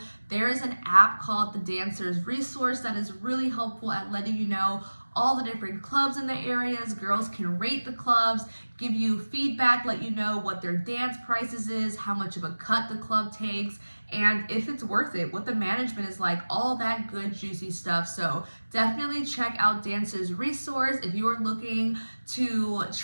There is an app called the Dancers Resource that is really helpful at letting you know all the different clubs in the areas. Girls can rate the clubs, give you feedback, let you know what their dance prices is, how much of a cut the club takes, and if it's worth it, what the management is like, all that good juicy stuff. So definitely check out Dancers Resource if you are looking to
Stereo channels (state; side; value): inverted; both; correlation -1.00